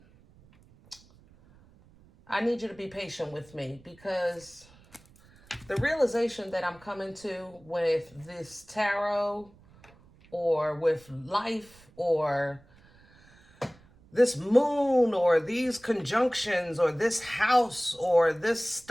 you to be patient with me because the realization that I'm coming to with this tarot or with life or this moon or these conjunctions or this house or this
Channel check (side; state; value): right; noise; rumble, 27 dB below the sound